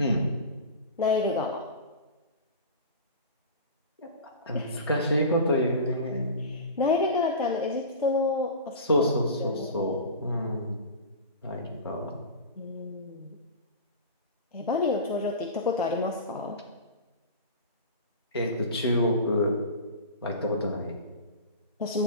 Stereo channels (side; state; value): both; inverted; correlation -0.31